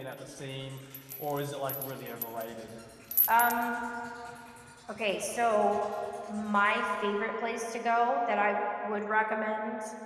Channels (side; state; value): both; identical; correlation 1.00